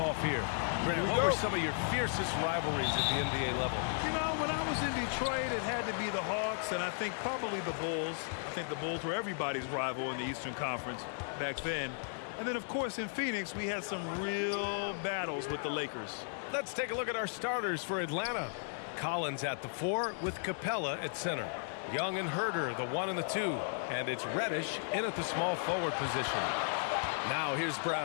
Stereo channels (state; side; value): silent; right; digital silence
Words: here. Grant, what were some of your fiercest rivalries at the NBA level? You know, when I was in Detroit, it had to be the Hawks, and I think probably the Bulls. I think the Bulls were everybody's rival in the Eastern Conference back then. And then, of course, in Phoenix, we had some real battles with the Lakers. Let's take a look at our starters for Atlanta. Collins at the 4 with Capella at center. Young and Herder, the 1 and the 2. And it's Reddish in at the small forward position. Now here's